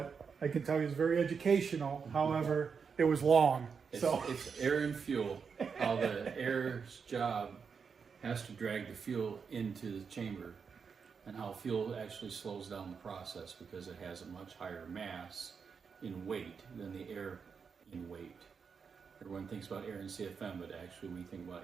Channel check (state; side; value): quieter; left; 5.9 dB